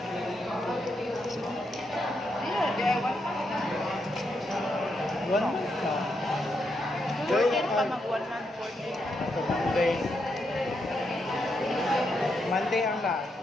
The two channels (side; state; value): both; normal; correlation 0.81